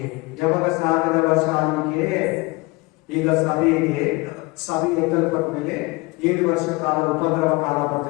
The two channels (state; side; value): quieter; right; 24.6 dB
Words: ಯಾವಾಗ 1000 ವರ್ಷ ಆಳ್ವಿಕೆ? ಈಗ ಸಭೆ ಎತ್ತಲ್ಪಟ್ಟ ಮೇಲೆ 7 ವರ್ಷ ಕಾಲ ಉಪದ್ರವ ಕಾಲ